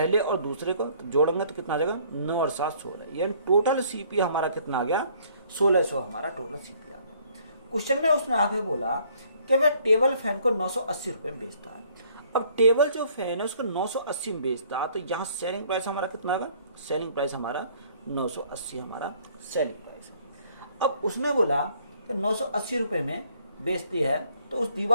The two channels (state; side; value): inverted; both; correlation -0.61